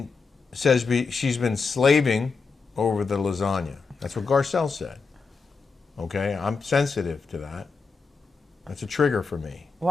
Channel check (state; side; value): quieter; right; 4.8 dB